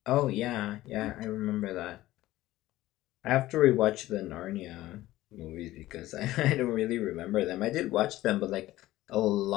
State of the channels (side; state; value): right; quieter; 16.1 dB